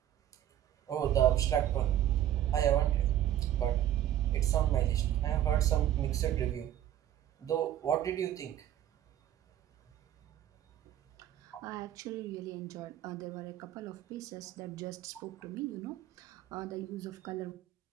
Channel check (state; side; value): quieter; left; 11.8 dB